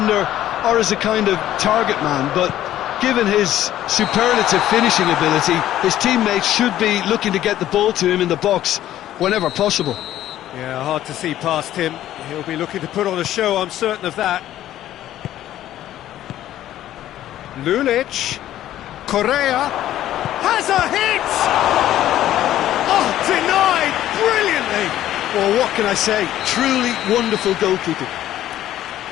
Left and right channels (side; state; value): right; quieter; 12.9 dB